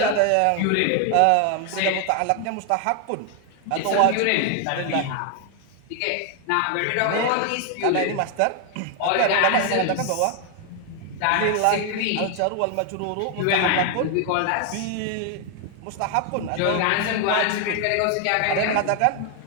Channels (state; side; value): different; both; correlation 0.00